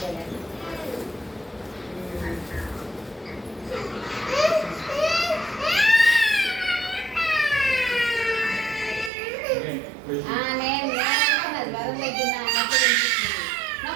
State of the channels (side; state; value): left; drops out; at 9.1 s